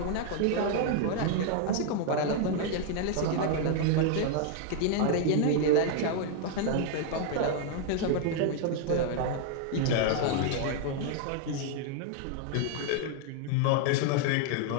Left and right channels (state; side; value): different; both; correlation 0.00